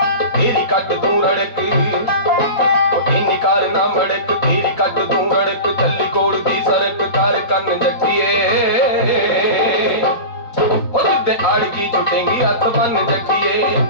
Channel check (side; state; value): right; late; 4.2 ms